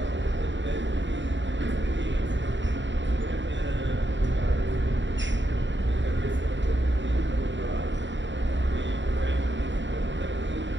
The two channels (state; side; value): late; left; 0.54 ms